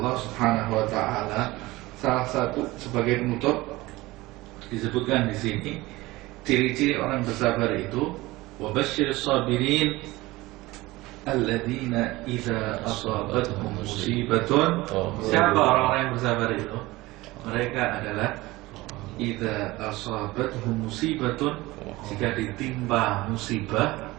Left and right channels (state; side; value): quieter; left; 19.9 dB